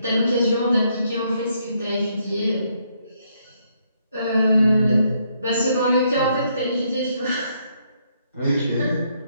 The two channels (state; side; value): inverted; both; correlation -0.73